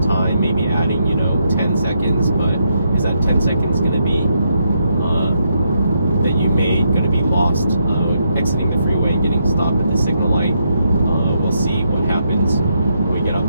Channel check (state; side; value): inverted; both; correlation -0.78